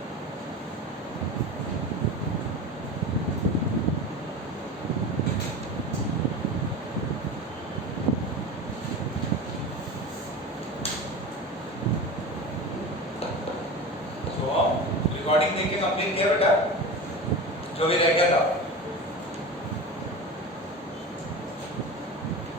तो रिकॉर्डिंग देख के कंप्लीट किया बेटा, जो भी रह गया था।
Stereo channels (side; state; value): both; normal; correlation 0.30